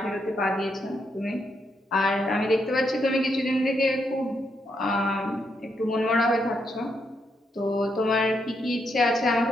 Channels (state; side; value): normal; both; correlation 0.79